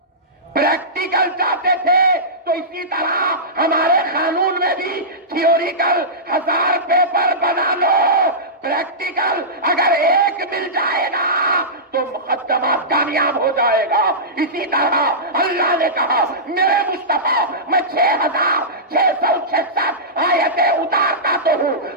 پریکٹیکل چاہتے تھے. تو اسی طرح ہمارے قانون میں بھی تھیوریکل 1000 پیپر بنا لو, پریکٹیکل اگر ایک مل جائے گا تو مقدمات کامیاب ہو جائے گا. اسی طرح اللہ نے کہا میرے مصطفیٰ میں 6666 آیتیں اتارتا تو ہوں,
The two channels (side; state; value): both; normal; correlation -0.17